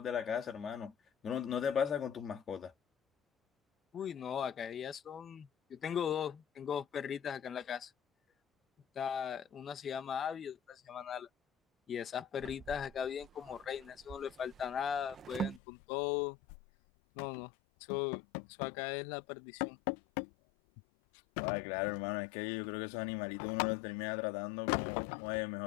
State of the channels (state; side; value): drops out; right; at 15.6 s